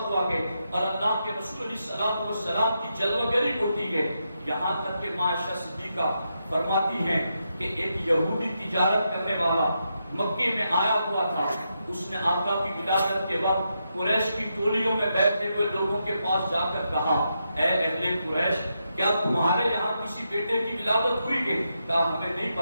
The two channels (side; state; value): both; inverted; correlation -0.84